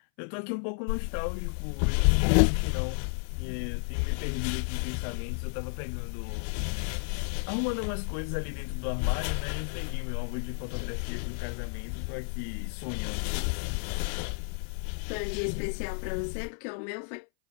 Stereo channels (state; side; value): silent; right; 57 dB below the other